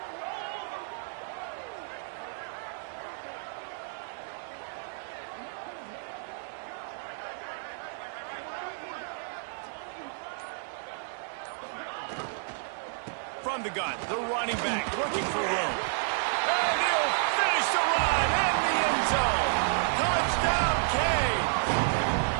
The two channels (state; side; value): silent; left; digital silence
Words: from the gun. The running back looking for room. And he'll finish the run in the end zone. Touchdown, Kane.